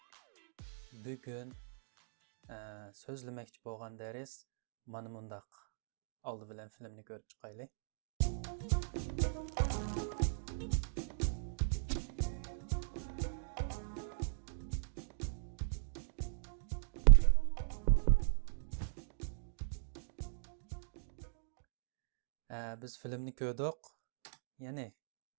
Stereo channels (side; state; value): left; silent; digital silence